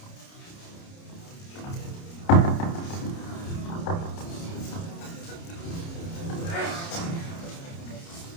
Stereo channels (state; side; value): late; right; 29 ms